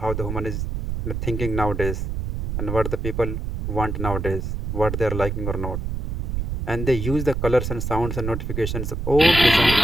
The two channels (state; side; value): noise; right; rumble, 3 dB below the sound